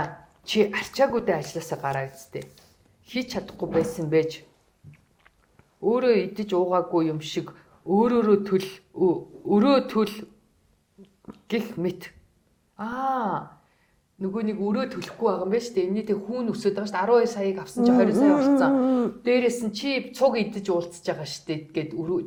Чи арчаагүйдээ ажилласаа гараа үсттэй. Хийж чадахгүй байсан байж өөрөө идэж уугаагүй юм шиг өрөө төл гих мэт. Нөгөө нэг өрөө төлөхгүй байгаа юм байна шүү дээ. Энэний тэг хүүн өсөд байгаа шүү дээ. 12 саяыг авсан чи 20 сая болцсон. Дээрээс нь чи цуг идэж уулзж байгаа шүү дээ гэд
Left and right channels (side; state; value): both; identical; correlation 1.00